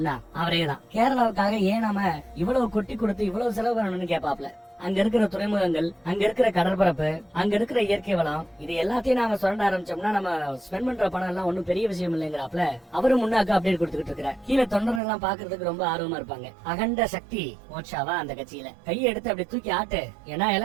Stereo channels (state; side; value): drops out; left; at 15.0 s